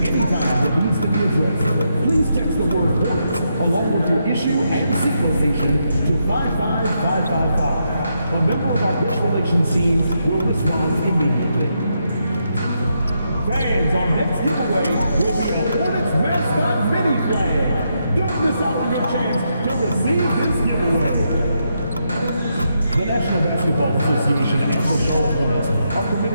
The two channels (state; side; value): inverted; both; correlation -0.81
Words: any time that needs to be addressed, please text the word Hornets along with your issue and signal station to 55555. A member of our press relations team will respond immediately. Fans, our next giveaway will be a Hornets mascot mini flag. Don't miss out on your chance to receive this giveaway. The National Basketball Association and the Charlotte Hornets are